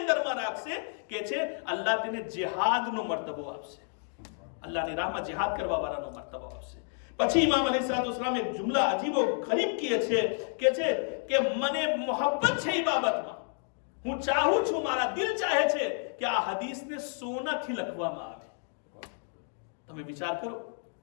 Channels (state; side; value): silent; right; 57 dB below the other